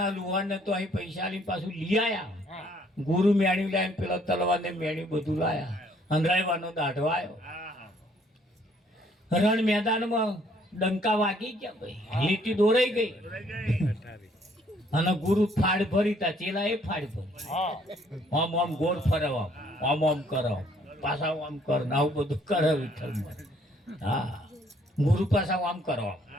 લુહારને તો અહીં પૈસા લઈને પાછું લઈ આયા. ગુરુ મેણ્યું લાવીને પેલા તલવારને મેણ્યું બધું લાયા. અંધારવાનો દાઢો આવ્યો. રણ મેદાનમાં ડંકા વાગી ગયા ભાઈ, લીટી દોરાઈ ગઈ. અને ગુરુ ફાડ ભરી તા ચેલા એ ફાડ ભરી. આમ આમ ગોળ ફરવા, આમ આમ કરો, પાછા આમ કર, આવું બધું કરે વિઠ્ઠલમાં. હા, ગુરુ પાછા આમ કરો,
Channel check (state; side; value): normal; both; correlation 0.64